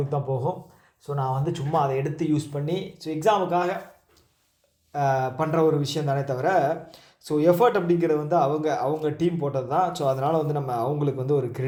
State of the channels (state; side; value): identical; both; correlation 1.00